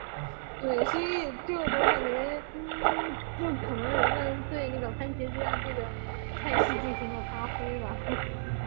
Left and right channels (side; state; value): left; silent; 57 dB below the other